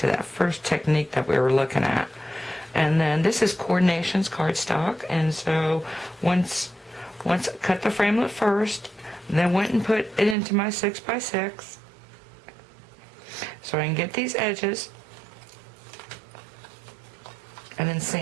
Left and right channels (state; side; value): drops out; left; at 10.4 s